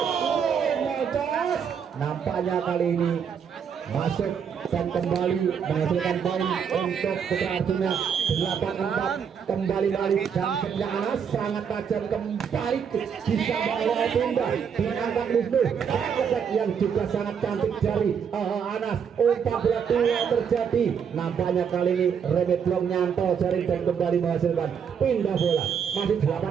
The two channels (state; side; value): quieter; left; 7.3 dB